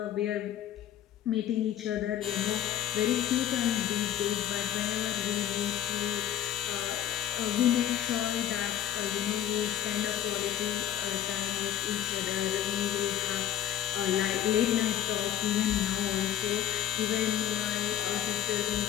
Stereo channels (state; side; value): quieter; right; 11.2 dB